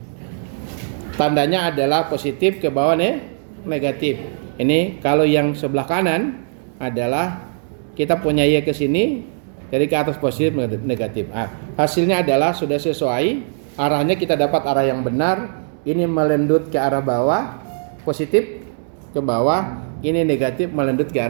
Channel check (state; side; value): silent; left; digital silence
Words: tandanya adalah positif, ke bawah negatif. Ini kalau yang sebelah kanan adalah kita punya y ke sini, jadi ke atas positif negatif. Hasilnya adalah sudah sesuai, arahnya kita dapat arah yang benar. Ini melendut ke arah bawah, positif ke bawah, ini negatif melendut ke